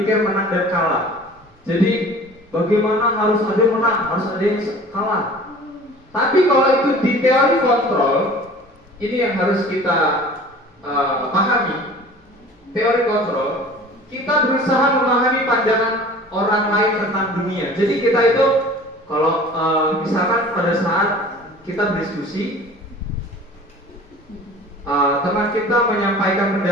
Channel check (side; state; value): both; normal; correlation 0.44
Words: menang dan kalah. Jadi bagaimana harus ada yang menang, harus ada yang kalah. Tapi kalau itu di teori kontrol, ini yang harus kita pahami. Teori kontrol, kita berusaha memahami pandangan orang lain tentang dunia. Jadi kita itu kalau misalkan pada saat kita berdiskusi, teman kita menyampaikan